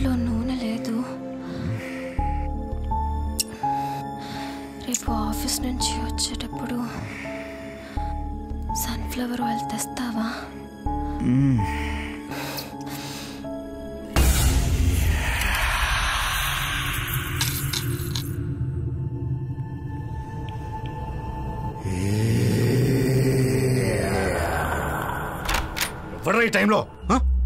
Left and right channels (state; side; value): identical; both; correlation 1.00